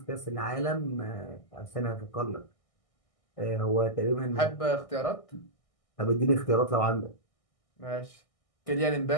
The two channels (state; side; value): late; right; 1.6 ms